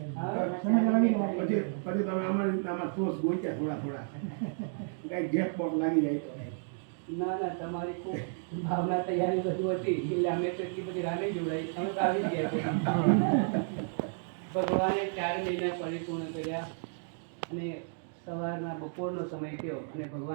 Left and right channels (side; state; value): left; silent; digital silence